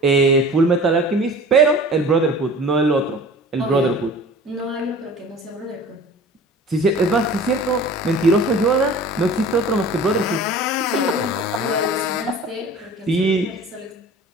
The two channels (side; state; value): both; normal; correlation 0.42